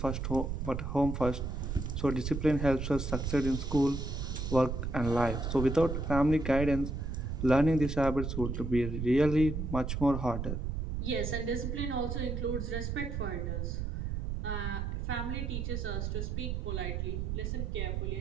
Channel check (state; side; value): noise; right; rumble, 3 dB below the sound